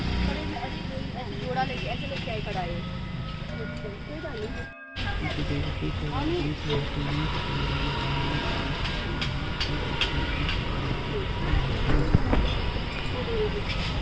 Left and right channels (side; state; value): both; identical; correlation 1.00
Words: जोड़ा लेके ऐसे लेके आई कढ़ाई।